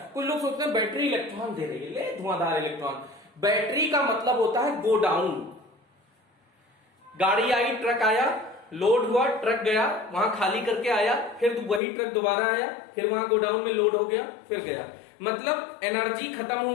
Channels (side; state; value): right; drops out; at 11.8 s